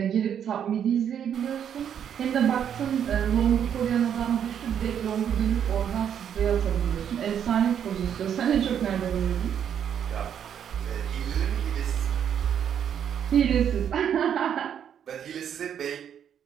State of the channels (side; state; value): left; quieter; 8.8 dB